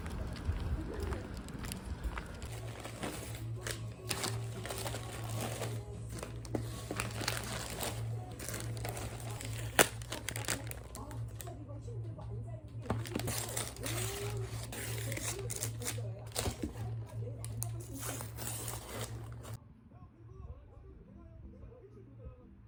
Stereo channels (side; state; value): both; identical; correlation 1.00